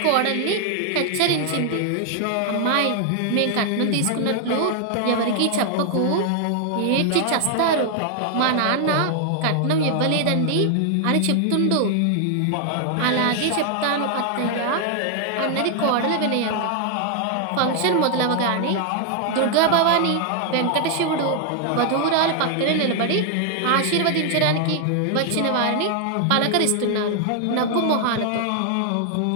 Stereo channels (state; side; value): different; both; correlation 0.00